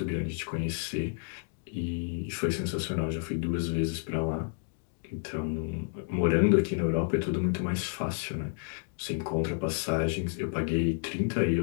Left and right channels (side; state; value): right; silent; digital silence